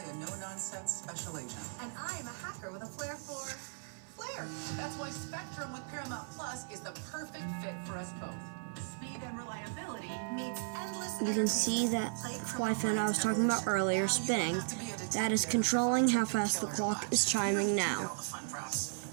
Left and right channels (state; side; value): silent; left; 54 dB below the other